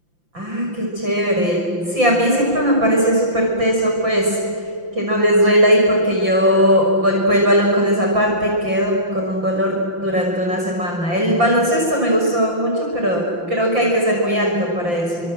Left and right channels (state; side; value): late; left; 5.8 ms